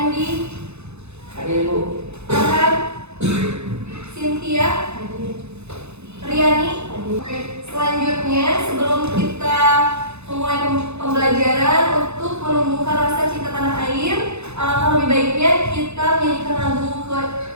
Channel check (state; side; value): late; left; 0.81 ms